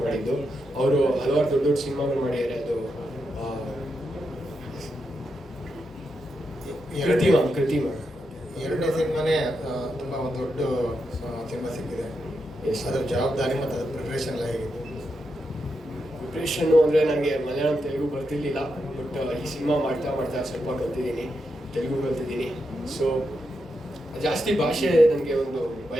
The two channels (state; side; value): normal; both; correlation 0.85